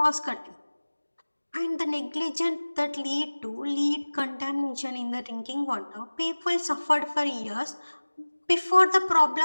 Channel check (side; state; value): both; inverted; correlation -1.00